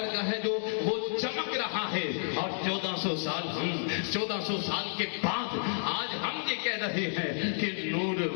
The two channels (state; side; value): silent; right; digital silence